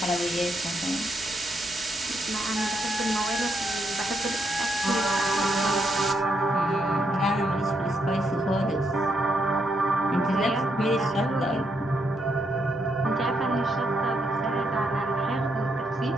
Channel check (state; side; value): normal; both; correlation 0.78